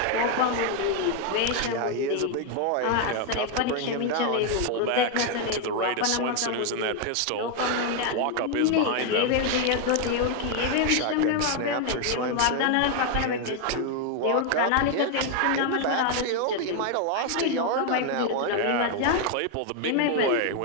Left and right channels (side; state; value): both; different; correlation 0.01